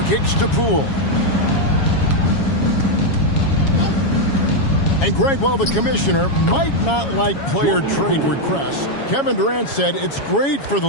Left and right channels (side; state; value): right; late; 7.2 ms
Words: kicks to Poole. And Greg, while the commissioner might not like player trade requests, Kevin Durant said it's great for the